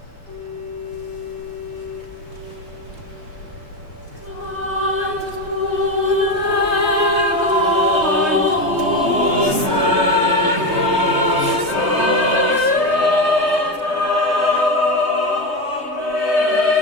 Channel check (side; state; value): left; late; 3.2 ms